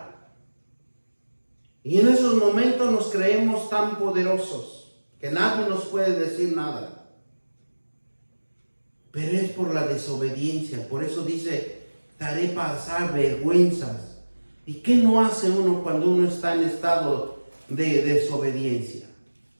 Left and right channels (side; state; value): both; inverted; correlation -1.00